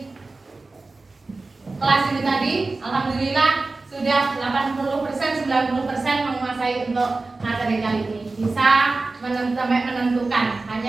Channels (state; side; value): quieter; left; 3.5 dB